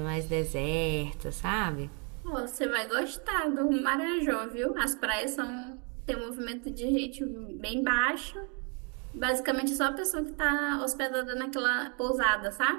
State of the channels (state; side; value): quieter; left; 36.4 dB